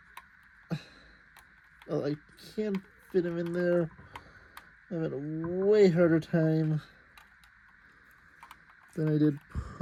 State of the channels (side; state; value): both; identical; correlation 1.00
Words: I can't fit him in there. I'm having a way harder time than I did